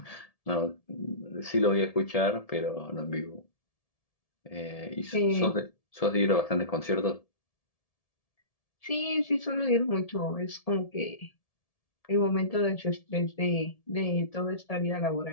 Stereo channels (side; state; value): right; late; 1.7 ms